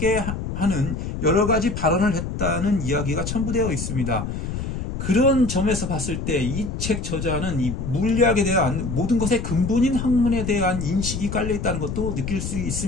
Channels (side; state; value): left; noise; rumble, 4 dB below the sound